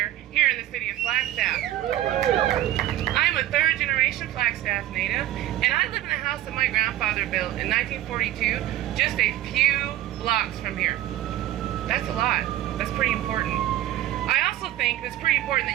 here in the city of Flagstaff. I am a third-generation Flagstaff native, and I live in a house that my grandfather built in 1942, just a few blocks from here. That's a lot. That's pretty important. I also think it's pretty important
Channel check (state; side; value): quieter; left; 14.1 dB